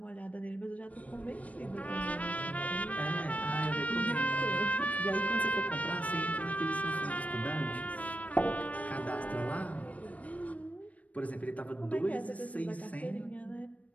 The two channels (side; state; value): right; late; 0.069 ms